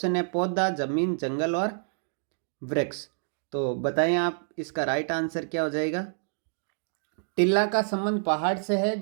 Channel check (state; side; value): silent; left; digital silence